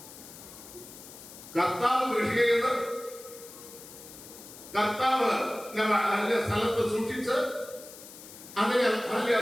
കർത്താവ് സ്ഥലത്ത് സൂക്ഷിച്ച് അതിനെ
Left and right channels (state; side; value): noise; left; hiss, 16 dB below the sound